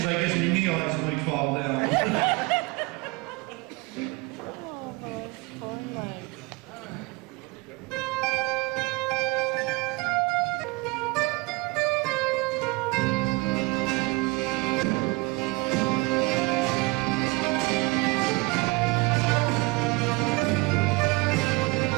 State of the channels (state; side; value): quieter; left; 25.2 dB